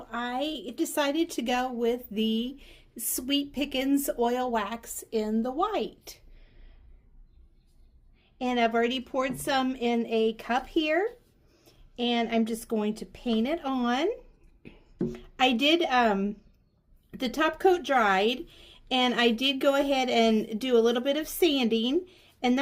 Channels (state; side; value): identical; both; correlation 1.00